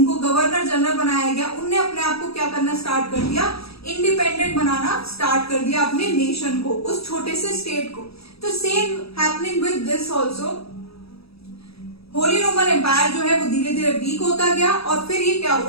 गवर्नर जनरल बनाया गया, उनने अपने आप को क्या करना स्टार्ट कर दिया, इंडिपेंडेंट बनाना स्टार्ट कर दिया अपने नेशन को, उस छोटे से स्टेट को। तो same happening with this also, Holy Roman Empire जो है वो धीरे धीरे वीक होता गया, और फिर ये क्या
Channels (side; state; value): right; late; 0.77 ms